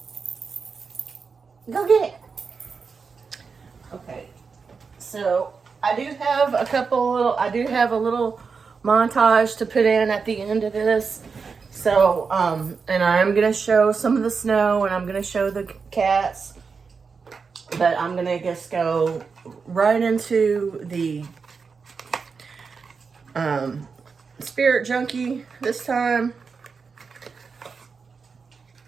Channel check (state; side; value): quieter; left; 5.2 dB